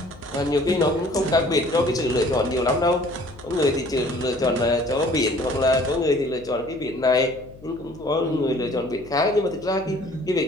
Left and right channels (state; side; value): noise; left; hum, 20 dB below the sound